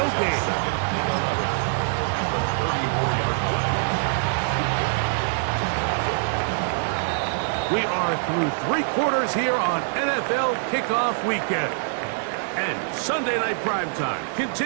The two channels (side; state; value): left; silent; digital silence